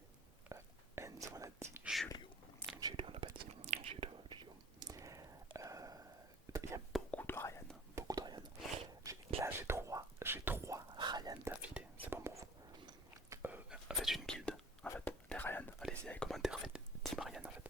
Enzo, on a dit. Julio. Julio, on l'a pas dit. Julio. Il y a beaucoup de Ryan. Beaucoup de Ryan. Là, j'ai trois Ryan d'affilée. C'est bon pour vous. Faites une guilde. En fait, les Ryan. Allez-y, les commentaires. Faites Team Ryan en fait.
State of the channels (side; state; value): both; normal; correlation 0.48